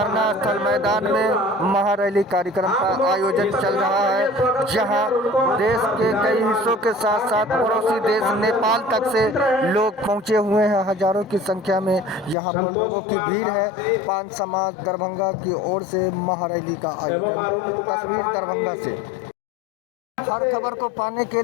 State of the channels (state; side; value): drops out; right; at 12.4 s